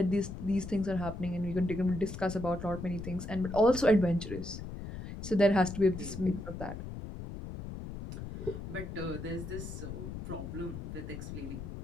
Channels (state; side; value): noise; left; rumble, 8 dB below the sound